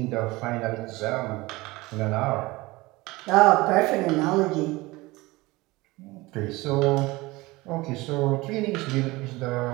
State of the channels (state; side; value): quieter; left; 21.3 dB